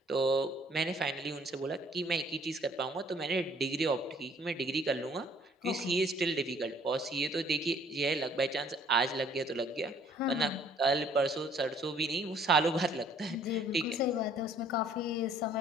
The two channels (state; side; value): normal; both; correlation 0.59